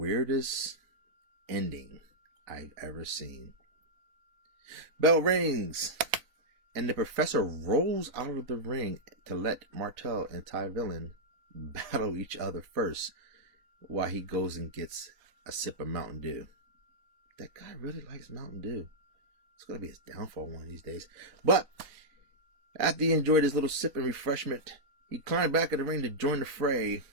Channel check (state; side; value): late; left; 4.0 ms